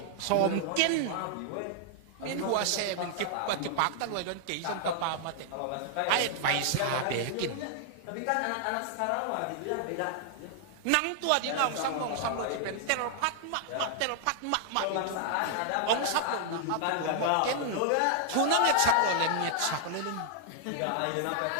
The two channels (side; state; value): both; different; correlation -0.01